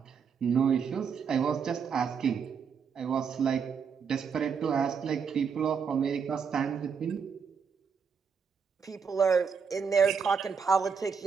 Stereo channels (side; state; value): left; quieter; 6.3 dB